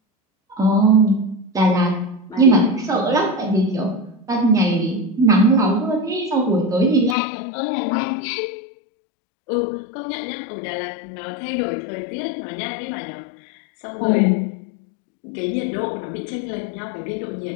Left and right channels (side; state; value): right; drops out; at 7.2 s